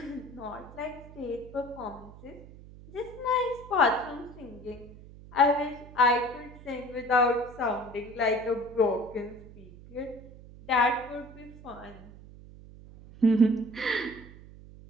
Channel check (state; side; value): noise; right; hum, 18 dB below the sound